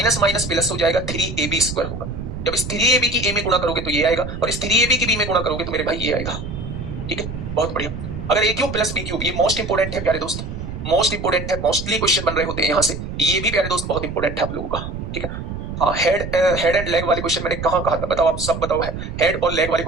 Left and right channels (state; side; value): noise; right; rumble, 7 dB below the sound